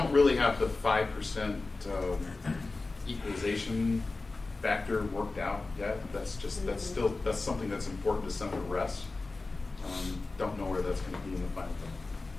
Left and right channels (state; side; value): quieter; right; 3.5 dB